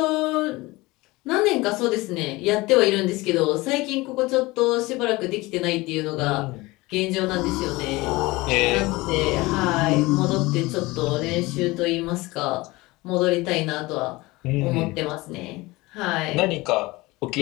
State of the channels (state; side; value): quieter; right; 21.5 dB